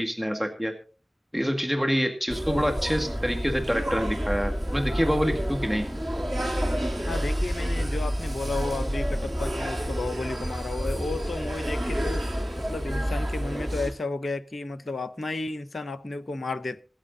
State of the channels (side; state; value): both; normal; correlation 0.97